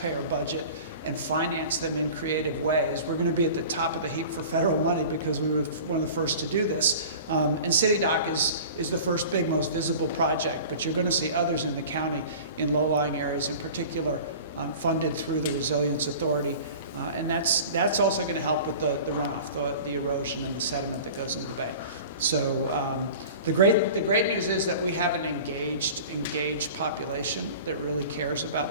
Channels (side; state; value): both; inverted; correlation -0.40